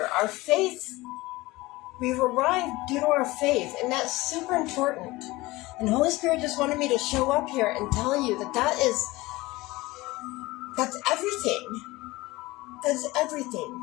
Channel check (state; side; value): quieter; right; 20.5 dB